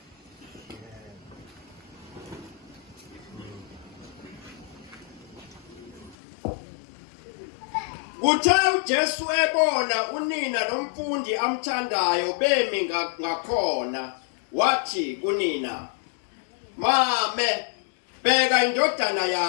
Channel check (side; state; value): right; drops out; at 6.2 s